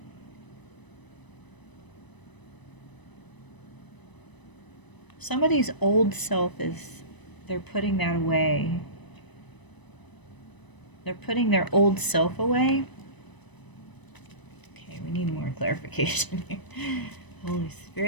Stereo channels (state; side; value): late; right; 1.0 ms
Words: Somebody's old self they're putting that away. They're putting their old self away. Okay, we need more clarification here. Holy